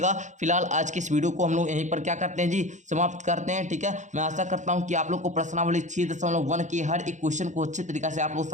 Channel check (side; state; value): left; late; 0.35 ms